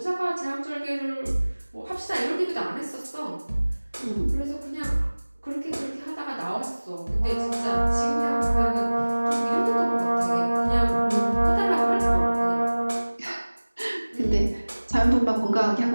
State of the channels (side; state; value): both; inverted; correlation -1.00